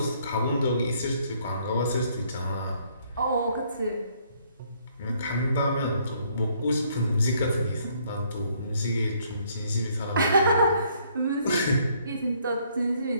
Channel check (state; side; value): inverted; both; correlation -0.66